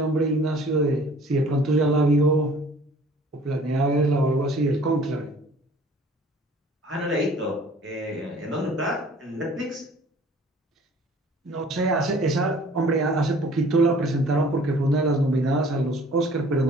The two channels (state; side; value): normal; both; correlation 0.52